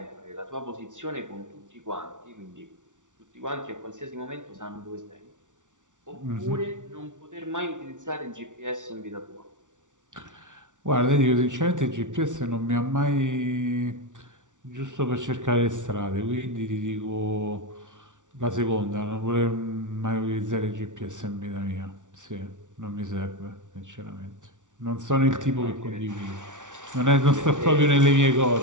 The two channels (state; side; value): late; left; 0.87 ms